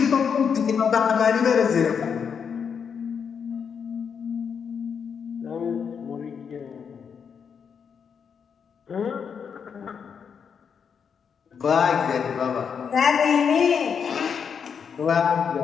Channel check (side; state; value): right; quieter; 6.8 dB